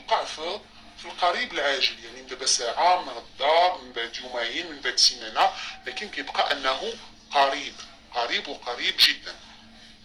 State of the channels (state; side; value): identical; both; correlation 1.00